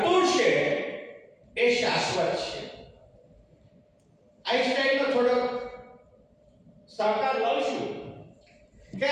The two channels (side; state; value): both; identical; correlation 1.00